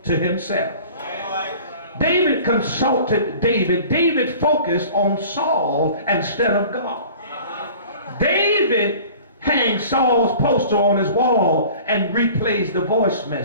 to himself. David consulted David. David focused on Saul instead of God. David hangs Saul's poster on his wall and replays the voice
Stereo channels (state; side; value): inverted; both; correlation -0.45